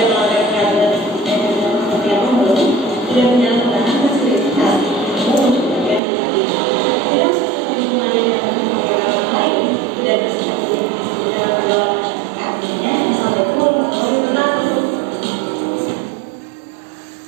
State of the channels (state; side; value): drops out; left; at 6.0 s